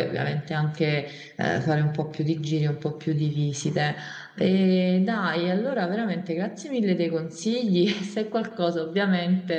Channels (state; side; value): identical; both; correlation 1.00